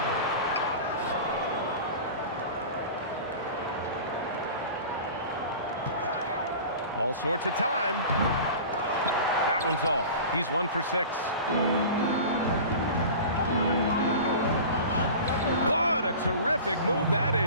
All sorts of time. That one's off. He's 1 for 6. What a terrific move that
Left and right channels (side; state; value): both; inverted; correlation -0.36